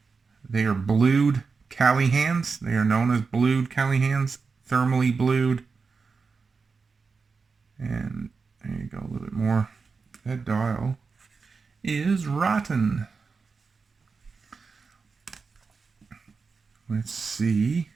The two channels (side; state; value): left; quieter; 4.8 dB